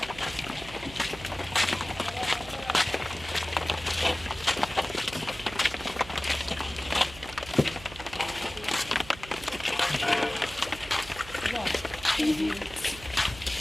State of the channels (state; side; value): noise; right; hum, 16 dB below the sound